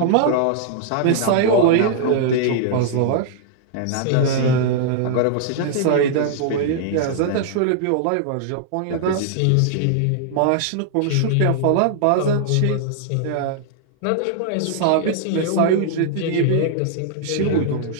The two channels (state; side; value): different; both; correlation -0.01